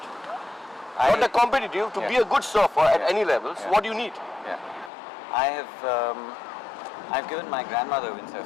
Not the competitive, to be a good surfer at any levels, what do you need? Yeah. I've given my grandmother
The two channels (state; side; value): drops out; right; at 4.9 s